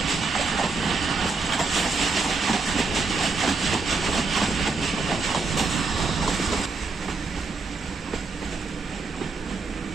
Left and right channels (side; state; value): left; quieter; 4.2 dB